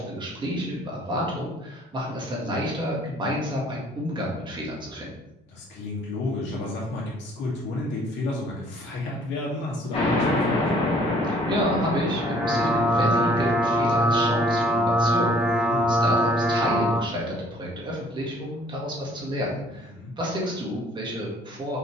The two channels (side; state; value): both; normal; correlation 0.58